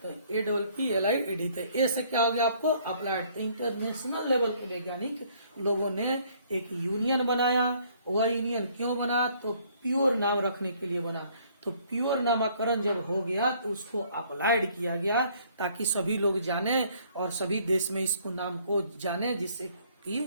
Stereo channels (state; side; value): inverted; both; correlation -0.62